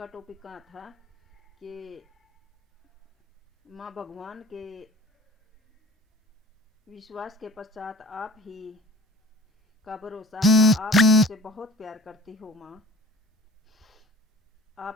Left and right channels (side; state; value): both; normal; correlation 0.45